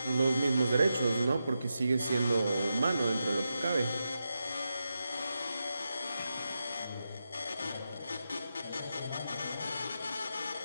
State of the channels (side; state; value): both; inverted; correlation -0.88